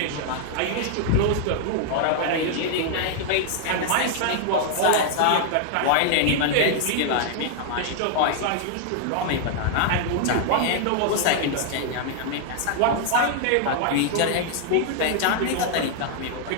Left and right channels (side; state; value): both; different; correlation 0.00